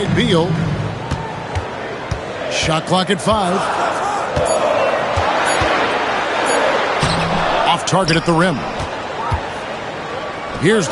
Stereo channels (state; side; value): identical; both; correlation 1.00